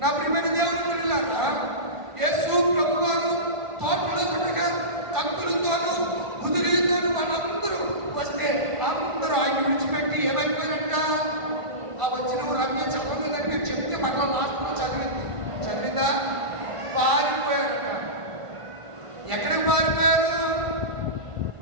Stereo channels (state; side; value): late; left; 1.5 ms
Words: నా ప్రియమైన దేవుని పిల్లలారా, యేసు ప్రభువారు తోటలో ఉండగా కత్తులతోనూ ముదిరితోనూ వాళ్ళందరూ వస్తే